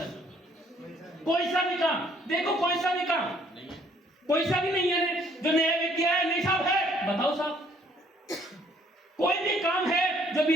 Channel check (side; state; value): both; normal; correlation 0.62